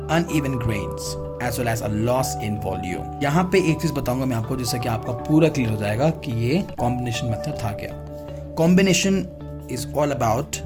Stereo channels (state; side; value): identical; both; correlation 1.00